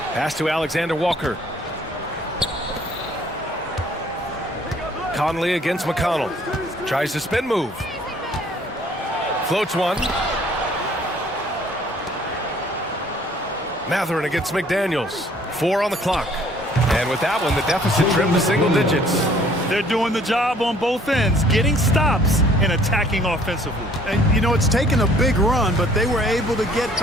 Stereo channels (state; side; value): normal; both; correlation 0.58